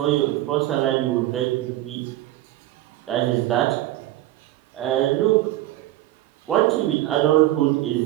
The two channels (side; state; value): left; quieter; 15.3 dB